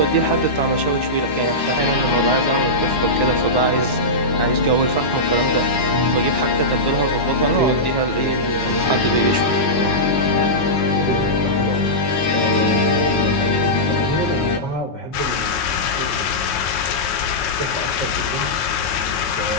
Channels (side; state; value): right; late; 9.4 ms